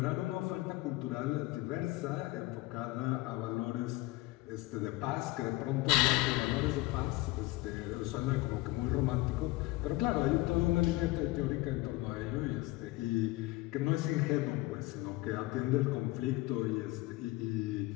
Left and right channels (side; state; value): right; quieter; 20.0 dB